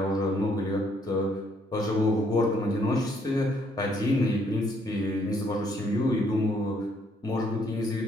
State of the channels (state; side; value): normal; both; correlation 0.68